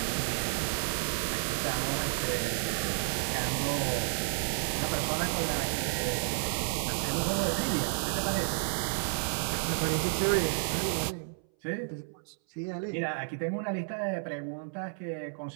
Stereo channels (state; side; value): silent; left; 57 dB below the other